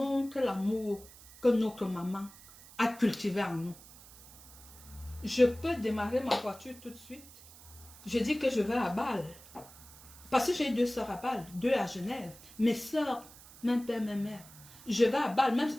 l'amour que notre maman a cultivé en nous. Je peux démarrer ma voiture tout de suite. Je dis que je vais à Bâle. Parce que j'ai 2 soeurs à Bâle, 2 à Genève. Mes soeurs, même père, même mère. Je vais à Bâle, même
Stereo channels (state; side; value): noise; right; hiss, 20 dB below the sound